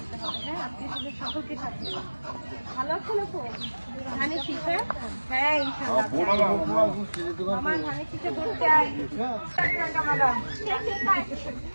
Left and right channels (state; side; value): inverted; both; correlation -1.00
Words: ভালো আছেন আপু? ধানের শীষে? হ্যাঁ ইনশাআল্লাহ। আমার ধানের শীষে ভোট চাই।